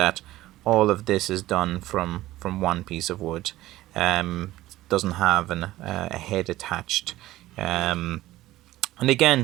all of this is done from one piece of wood. Doesn't have a head attached. Um, and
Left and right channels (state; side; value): quieter; left; 16.2 dB